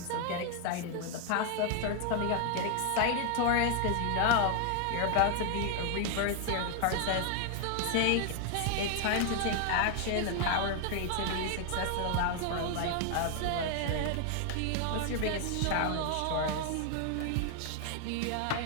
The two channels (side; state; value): both; different; correlation 0.00